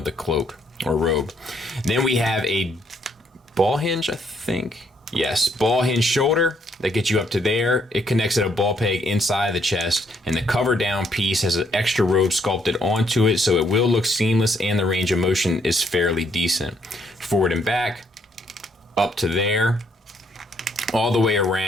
the cloak or robe. Then we have a ball hinge, I think. Yes, ball hinge shoulder that gets you up to there. It connects at a ball peg inside the chest, and the cover down piece has an extra robe sculpted onto it, so it will look seamless, and the range of motion is fairly decent. Forward and back, up to there, all the way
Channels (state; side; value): normal; both; correlation 0.71